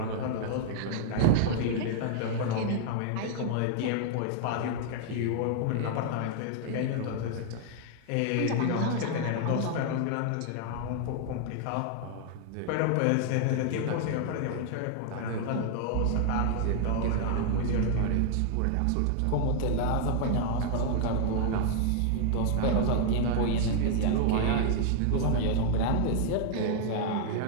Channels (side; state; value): both; different; correlation 0.00